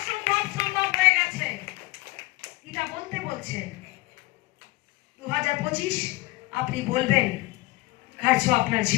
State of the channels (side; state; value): right; quieter; 21.1 dB